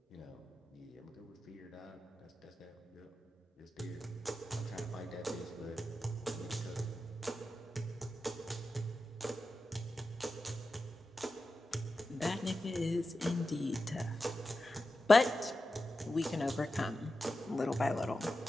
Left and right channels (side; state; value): both; normal; correlation 0.91